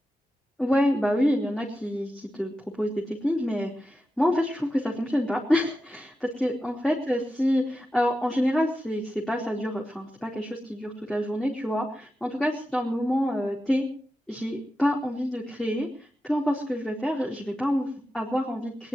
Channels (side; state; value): both; normal; correlation 0.91